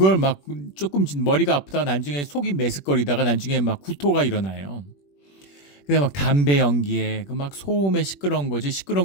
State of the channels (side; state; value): right; late; 21 ms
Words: 막 조금 머리가 아프다가 나중에 속이 메스꺼리다가 나중에 막 구토가 일어나요. 근데 막 담배 연기에 그 막 소음에 시끄러운